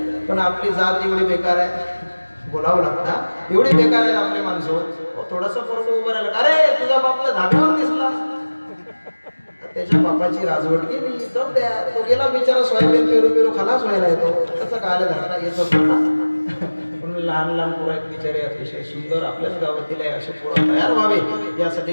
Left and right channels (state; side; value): inverted; both; correlation -1.00